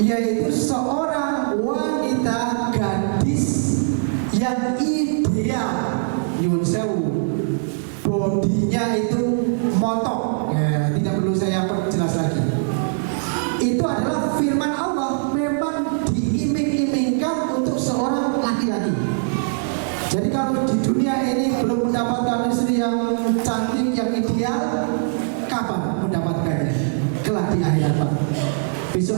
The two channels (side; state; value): left; silent; digital silence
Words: seorang wanita gadis yang ideal. Nyun sewu, bodinya itu montok, ya, tidak perlu saya perjelas lagi. Itu adalah firman Allah, memang diiming-imingkan untuk seorang laki-laki. Jadi kalau di dunia ini belum mendapatkan istri yang cantik, yang ideal, kapan mendapatkannya? Kelak di akhirat, Pak.